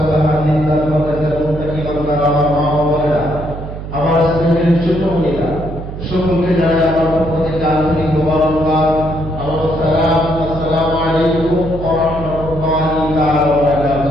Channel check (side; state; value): right; noise; hum, 9 dB below the sound